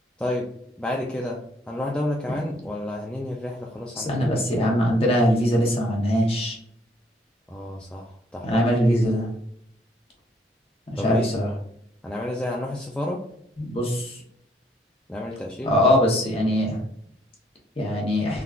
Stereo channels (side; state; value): both; normal; correlation 0.66